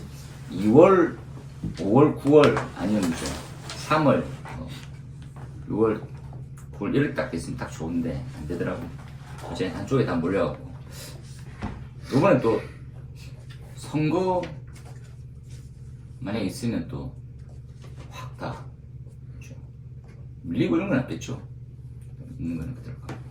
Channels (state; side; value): identical; both; correlation 1.00